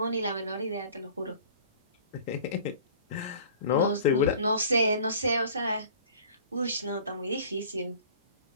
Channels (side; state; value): both; inverted; correlation -0.46